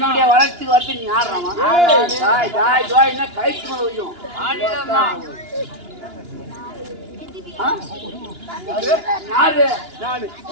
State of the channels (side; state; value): left; late; 2.9 ms